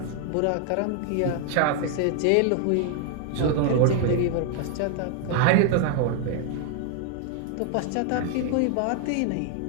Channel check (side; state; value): both; different; correlation 0.00